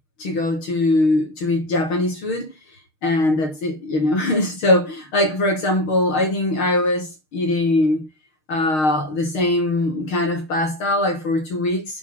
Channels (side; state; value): right; late; 6.5 ms